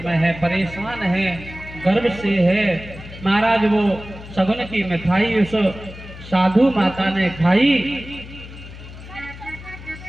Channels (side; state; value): left; noise; hum, 15 dB below the sound